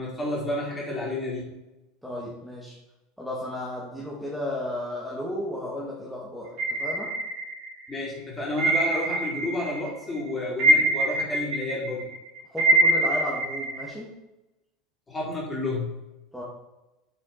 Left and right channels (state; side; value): normal; both; correlation 0.36